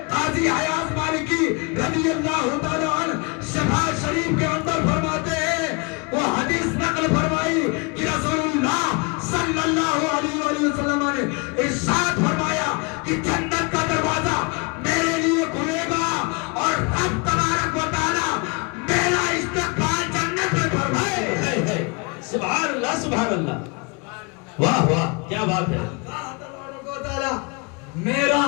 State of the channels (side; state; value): right; quieter; 30.9 dB